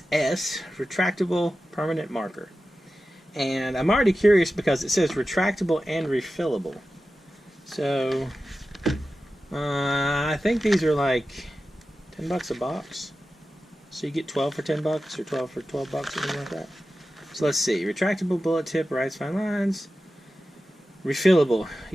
S Retractable Permanent Marker. And I'm already curious because it says retractable and refillable. So, I think these are like 10 bucks a box. So you get 12 for 10 bucks or 12 for 12 bucks or something like that. So let's see. Retractable bullet tip, writes fine lines. Refillable.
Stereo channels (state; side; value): normal; both; correlation 0.93